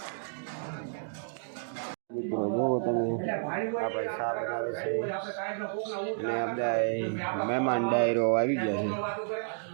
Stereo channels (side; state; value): left; silent; digital silence